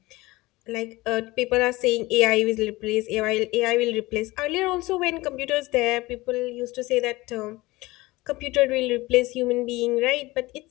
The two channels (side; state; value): right; quieter; 20.5 dB